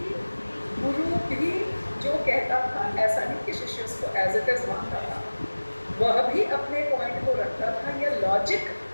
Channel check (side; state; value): both; inverted; correlation -1.00